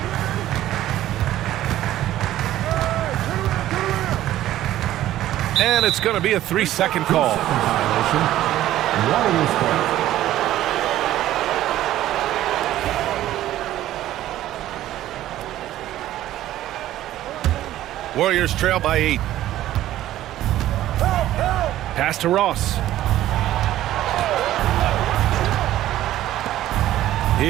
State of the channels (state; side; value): quieter; left; 13.7 dB